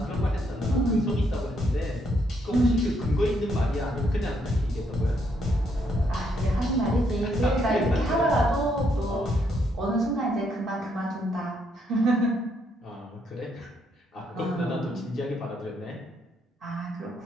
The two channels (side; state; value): both; normal; correlation 0.74